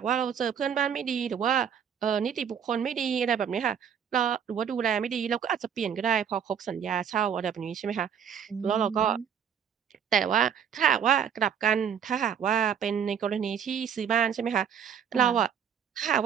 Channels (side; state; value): left; quieter; 8.1 dB